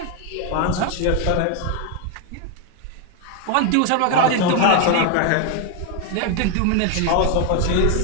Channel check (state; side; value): different; both; correlation 0.01